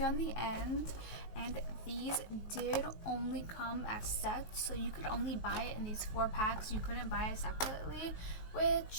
on the end, and these did only come as sets, so you could only buy it in these 4 packs. You couldn't buy it separately,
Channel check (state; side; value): late; right; 19 ms